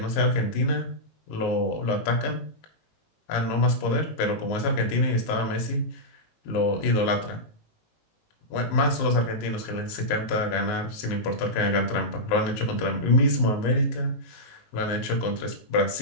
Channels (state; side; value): late; right; 19 ms